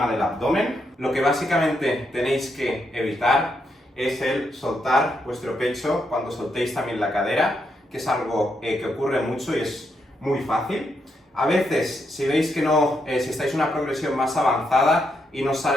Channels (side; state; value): both; normal; correlation 0.80